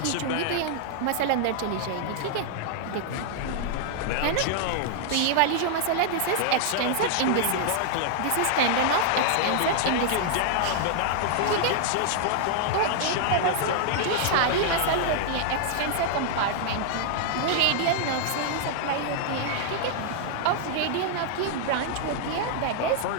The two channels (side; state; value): both; different; correlation -0.01